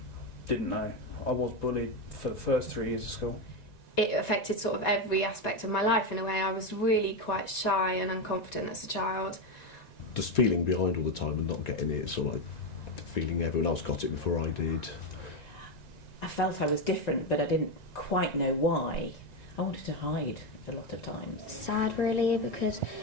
didn't know. I was bullied for the first 3 years of school. It affected sort of every aspect of my life in a way. I was really quite shy and unconfident as a child. Just feeling behind all the time and not getting it, sort of like feeling everyone else got it before I did. I felt I was different, but I didn't quite know why. I wanted to hide a lot of times. Sad, really, because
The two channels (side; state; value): right; late; 1.9 ms